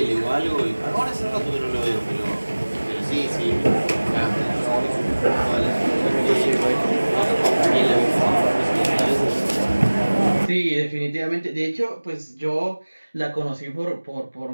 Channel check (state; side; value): inverted; both; correlation -1.00